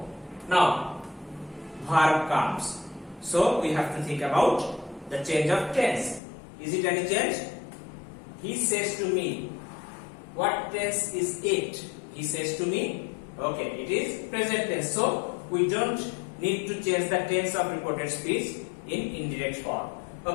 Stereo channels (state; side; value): drops out; right; at 6.2 s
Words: Now verb comes. So we have to think about the change of tense. Is it any change? He says to me. What tense is it? He says to me. Okay, it is present tense. So we don't need to change the tense of reported speech in indirect form.